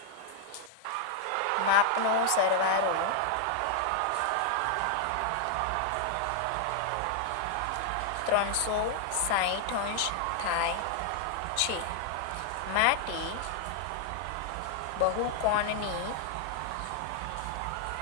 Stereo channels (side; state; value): both; different; correlation 0.00